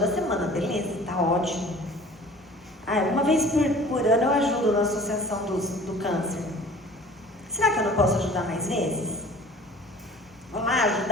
semana, beleza, tá ótimo. Uma vez por ano eu ajudo na associação do câncer. Será que eu não posso ajudar mais vezes? Vou lá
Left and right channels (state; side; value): normal; both; correlation 0.46